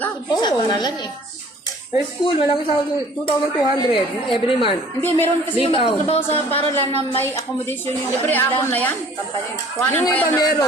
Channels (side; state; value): both; normal; correlation 0.52